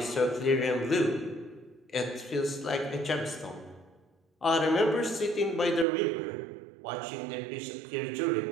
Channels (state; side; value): drops out; left; at 5.9 s